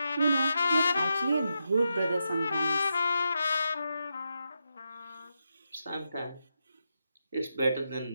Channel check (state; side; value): inverted; both; correlation -0.86